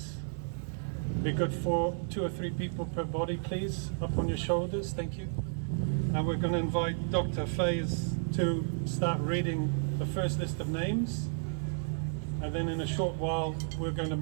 Be good for 2 or 3 people per body, please, up on your shoulders. Thank you. And we're going to invite Dr. Faiz to start reading the first list of names. And then in a short while, we're going to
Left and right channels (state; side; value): silent; left; digital silence